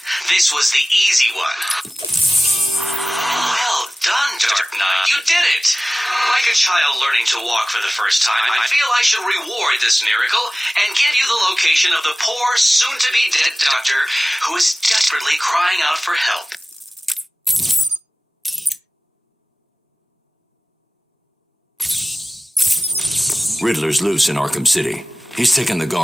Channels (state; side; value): normal; both; correlation 0.97